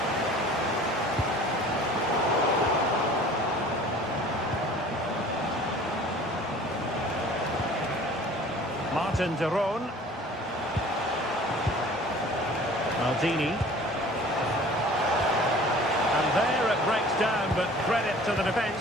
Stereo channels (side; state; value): both; normal; correlation 0.47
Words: Martin de Roon. Maldini. And there it breaks down, but credit to the